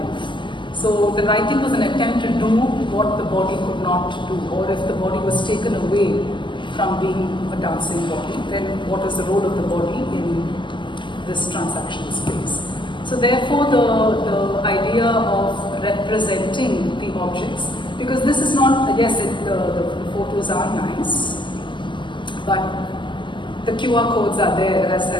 So the writing was an attempt to do what the body could not do, or if the body was taken away from being a dancing body, then what is the role of the body in this transactional space? So therefore the idea of representing the objects, because this is not, yes, the photos are nice, but the QR codes are there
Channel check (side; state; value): right; late; 0.23 ms